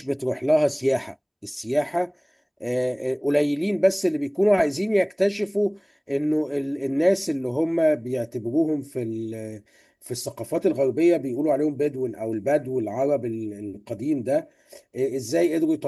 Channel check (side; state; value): both; identical; correlation 1.00